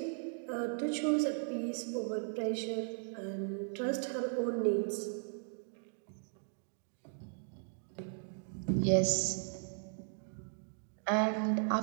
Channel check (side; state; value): left; silent; 53 dB below the other